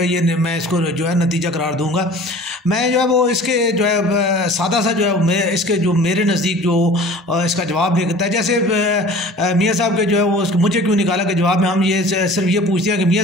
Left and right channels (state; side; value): normal; both; correlation 0.44